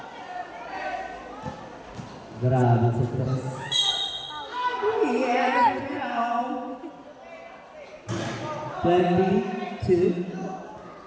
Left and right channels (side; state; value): both; identical; correlation 1.00